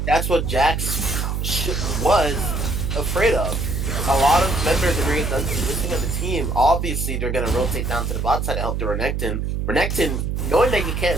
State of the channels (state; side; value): noise; right; hum, 1 dB below the sound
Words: that's what Jax was afraid of. A lot of members of Maria's Dungeon listening on the team, obviously they're gonna rotate down to the bot side to help the Renekton. Renekton, knowing that he can't